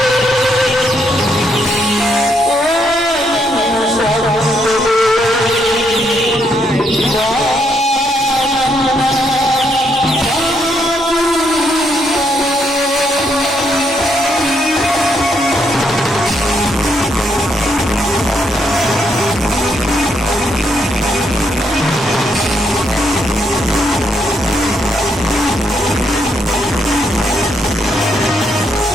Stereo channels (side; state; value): both; normal; correlation 0.75